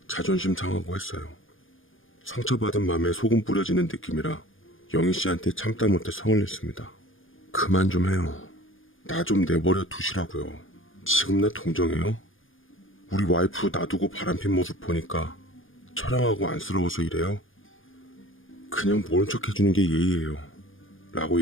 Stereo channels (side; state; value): right; late; 0.58 ms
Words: 자존심 상하고 했어요. 상처받은 맘에 소금 뿌려지는 느낌이라 영희 씨한테 참다 못해 성을 냈습니다. 그만 좀 해요. 나 좀 내버려 두시라고요. 지금 나 동정해요? 우리 와이프 놔두고 바람핀 모습 보니까 처량하고 안쓰러워서 이래요? 그냥 모른 척 해주는 게 예의예요. 라고